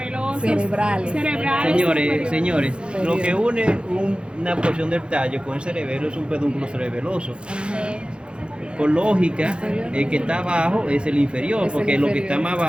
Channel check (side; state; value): left; late; 0.055 ms